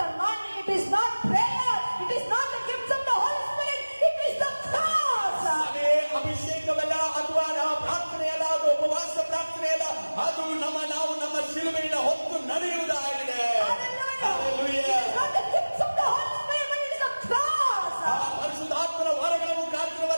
anointing, it is not prayer, it is not the gifts of the Holy Spirit, it is the cross. ಅದೇ ಅಭಿಷೇಕವಲ್ಲ, ಅಥವಾ ಪ್ರಾರ್ಥನೆ ಅಲ್ಲ, ಅದು ಉಪವಾಸ ಪ್ರಾರ್ಥನೆ ಅಲ್ಲ, ಅದು ನಾವು ನಮ್ಮ ಶಿಲುಬೆಯನ್ನು ಹೊತ್ತು ನಡೆಯುವುದಾಗಿದೆ. Hallelujah. It is not the gifts of the Holy Spirit, but it is the cross. ಪರಿಶುದ್ಧಾತ್ಮನ ವರಗಳ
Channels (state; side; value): inverted; both; correlation -1.00